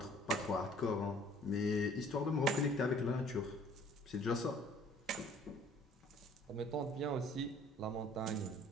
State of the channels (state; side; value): normal; both; correlation 0.55